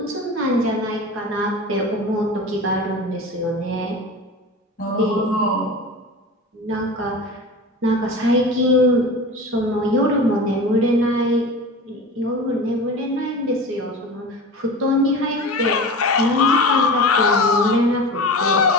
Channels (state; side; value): normal; both; correlation 0.32